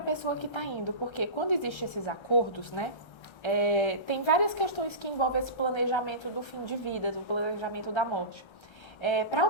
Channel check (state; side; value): late; right; 1.3 ms